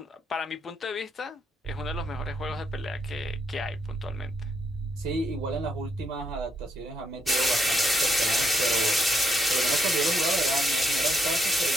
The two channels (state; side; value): normal; both; correlation 0.76